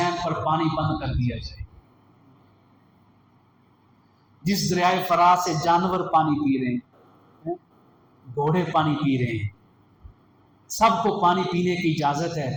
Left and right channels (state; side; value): identical; both; correlation 1.00